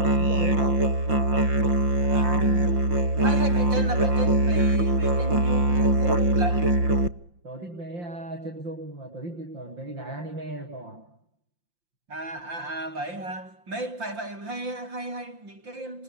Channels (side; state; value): left; late; 5.7 ms